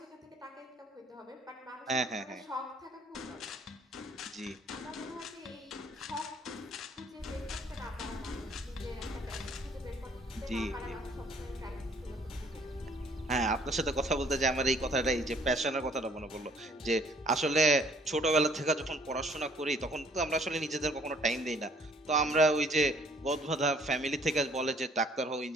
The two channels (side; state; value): both; normal; correlation 0.60